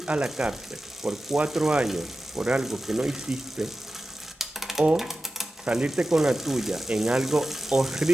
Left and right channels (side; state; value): both; normal; correlation 0.94